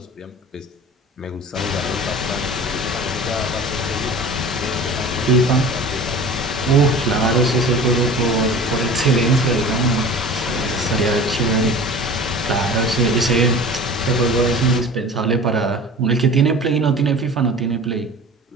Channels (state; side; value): normal; both; correlation 0.39